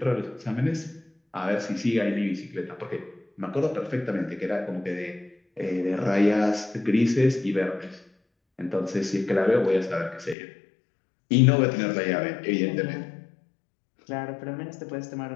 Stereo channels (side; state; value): right; drops out; at 10.4 s